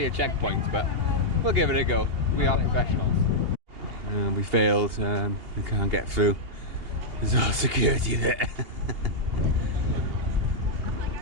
a checkpoint, but we'll give it a go. We are professionals. We failed, we can't get through. There's all security there.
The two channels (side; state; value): left; late; 2.8 ms